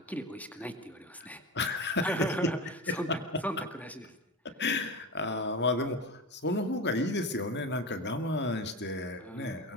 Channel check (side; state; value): both; normal; correlation 0.26